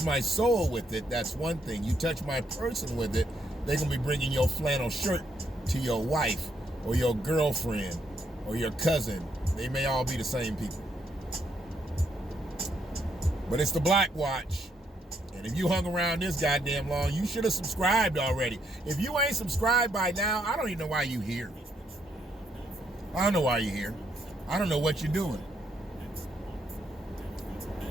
my soul with it, that's one thing. You touch my person with it, they're going to be bringing your flannel shirt to your wife or your girlfriend or your cousin. They may all be the same people. But it's the Black Watch. And if you hung around this goddamn long, you should have subscribed already. If you ain't subscribed by now, I don't even know why you here. I don't know why you're here. I don't know what you're doing.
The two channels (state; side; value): normal; both; correlation 0.75